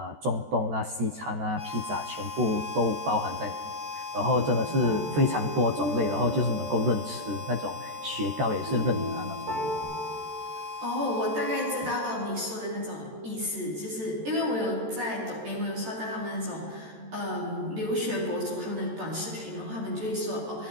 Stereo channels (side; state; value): left; late; 14 ms